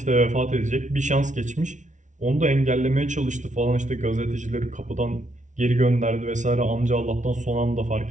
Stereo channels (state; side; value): late; left; 0.36 ms